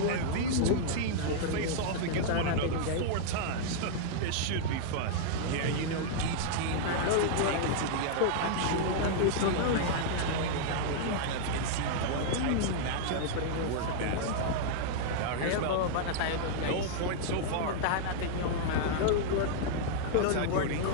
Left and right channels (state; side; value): different; both; correlation -0.01